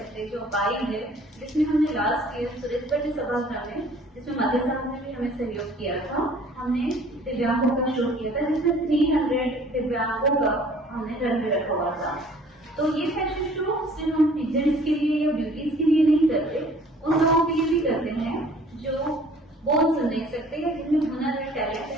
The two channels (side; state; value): both; normal; correlation 0.53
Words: जो बाई है, जिसमें हमने लास्ट ईयर सुरेश भट्ट सभागृह में, जिसमें मध्य साहब ने भी हमें सहयोग किया था, हमने दिव्यांगों का शो किया था, जिसमें 300 दिव्यांगों का हमने रन में रखा हुआ था। तो ये फैशन शो सिर्फ हम पीजेंट्स के लिए या ब्यूटीज के लिए नहीं करते, उन लोगों के लिए भी करते हैं जो बोल सुन नहीं सकते या जिनमें हुनर है, टैलेंट